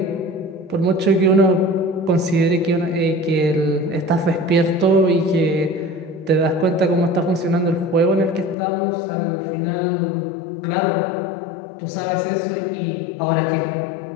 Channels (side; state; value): right; drops out; at 8.6 s